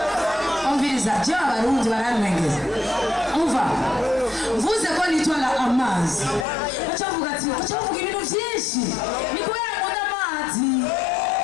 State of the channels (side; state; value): right; drops out; at 6.5 s